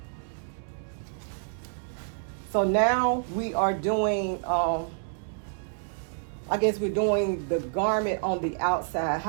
So now we are doing, I guess we're doing the garment on the outside.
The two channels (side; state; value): left; silent; digital silence